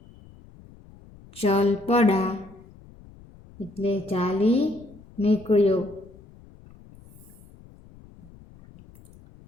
ચલ પડા એટલે ચાલી નીકળ્યો.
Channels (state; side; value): noise; left; rumble, 23 dB below the sound